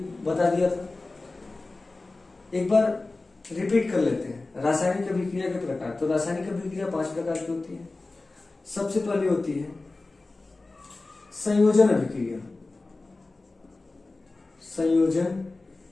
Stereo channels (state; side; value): quieter; right; 3.3 dB